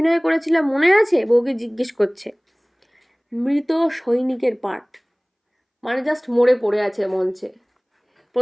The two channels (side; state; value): both; identical; correlation 1.00